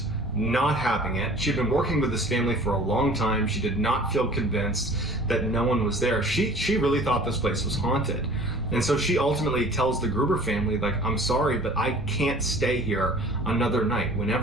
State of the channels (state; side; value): normal; both; correlation 0.47